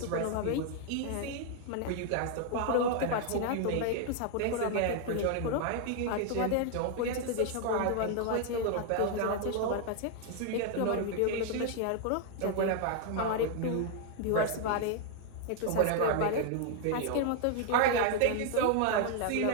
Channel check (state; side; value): different; both; correlation 0.00